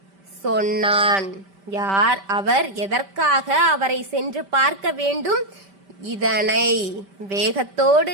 சொன்னான்? யார் அவர்? எதற்காக அவரை சென்று பார்க்க வேண்டும்? இதனை வேகத்தோடு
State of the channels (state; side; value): late; left; 5.1 ms